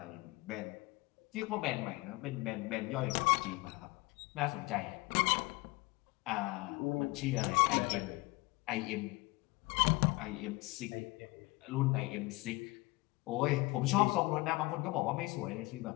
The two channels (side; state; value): right; quieter; 23.0 dB